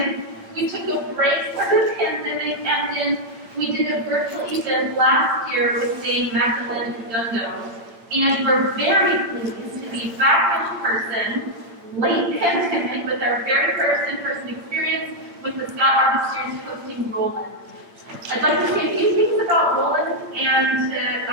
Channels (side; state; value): left; late; 8.8 ms